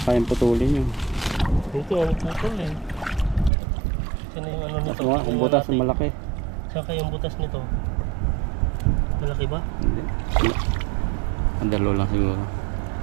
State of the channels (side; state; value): left; drops out; at 3.5 s